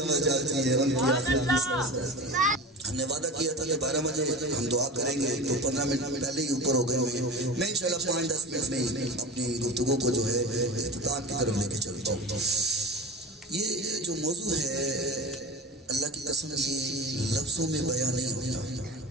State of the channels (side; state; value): both; normal; correlation 0.32